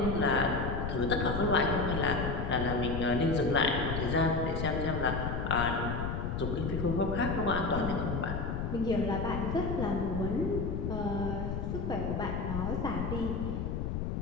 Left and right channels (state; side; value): noise; left; rumble, 2 dB below the sound